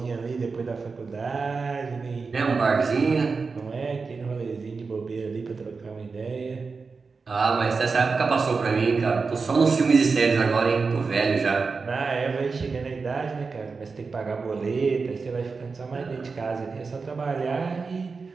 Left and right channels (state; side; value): quieter; left; 4.6 dB